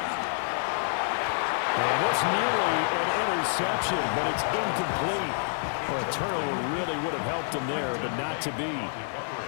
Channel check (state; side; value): silent; right; 55 dB below the other